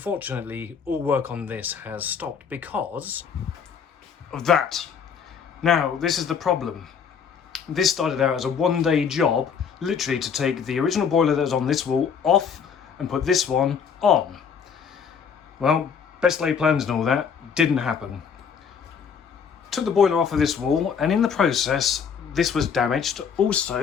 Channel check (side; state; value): right; quieter; 6.7 dB